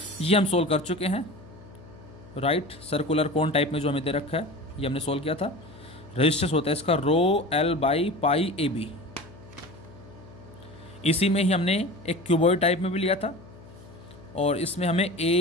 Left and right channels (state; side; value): noise; left; hum, 20 dB below the sound